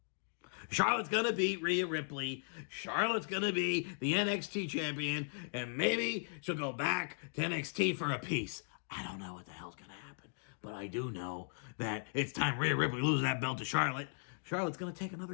Charlotte's going to beat Rhea Ripley. Charlotte's going to be the NXT champion. And maybe she'll go back to NXT for a piece. I don't know what the hell's going to happen. But I do know that it's time Rhea Ripley loses that belt to Charlotte. Charlotte's going to take another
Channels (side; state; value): right; silent; digital silence